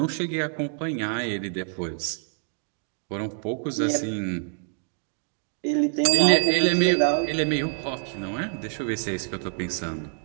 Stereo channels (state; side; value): silent; left; 56 dB below the other